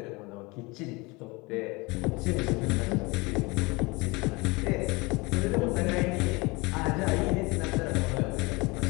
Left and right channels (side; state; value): right; quieter; 25.2 dB